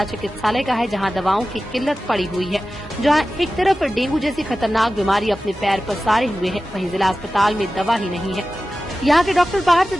चिकित्सालय का है, जहां दवाओं की किल्लत पड़ी हुई है। जहां एक तरफ डेंगू जैसी खतरनाक बीमारी अपने पैर पसारे हुए है, वहीं जिला अस्पताल में दवा ही नहीं है। यहाँ के डॉक्टर बाहर से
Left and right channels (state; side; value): normal; both; correlation 0.95